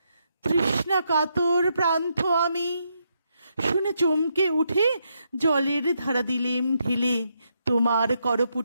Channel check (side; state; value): both; inverted; correlation -0.79